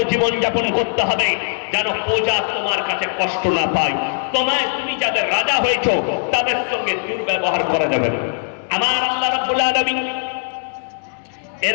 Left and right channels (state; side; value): silent; right; digital silence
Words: জীবন যাপন করতে হবে যেন প্রজা তোমার কাছে কষ্ট না পায়। তুমি যাদের রাজা হয়েছো তাদের সঙ্গে দুর্ব্যবহার করা যাবে না। আমার আল্লাহ রাব্বুল আলামিন